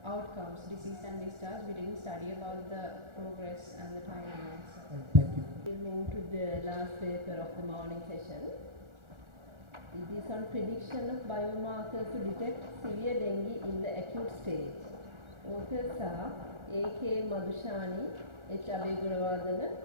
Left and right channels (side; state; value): left; late; 1.4 ms